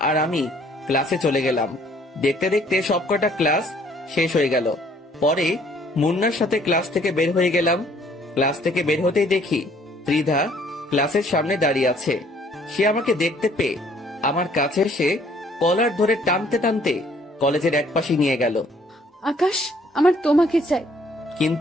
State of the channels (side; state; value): both; normal; correlation 0.61